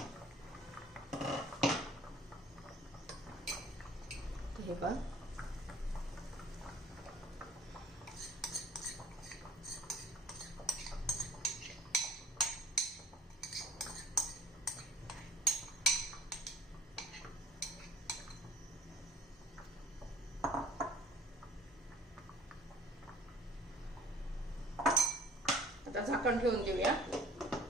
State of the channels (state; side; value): normal; both; correlation 0.49